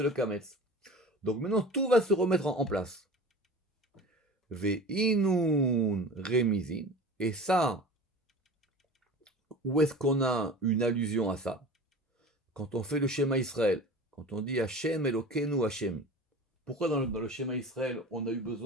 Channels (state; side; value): normal; both; correlation 0.36